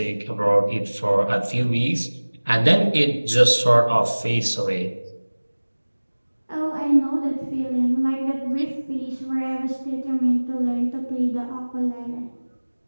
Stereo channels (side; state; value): both; inverted; correlation -1.00